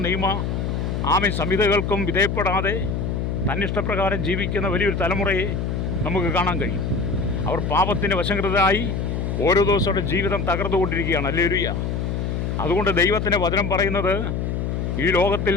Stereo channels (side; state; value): left; noise; hum, 1 dB below the sound